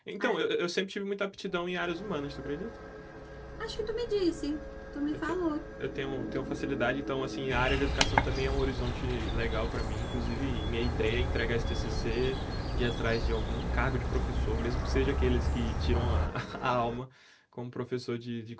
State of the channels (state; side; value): identical; both; correlation 1.00